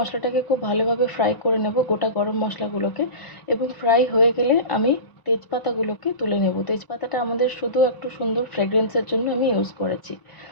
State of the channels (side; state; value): right; late; 1.0 ms